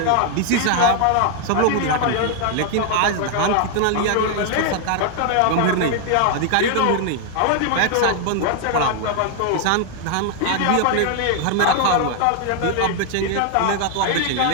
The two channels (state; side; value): different; both; correlation 0.00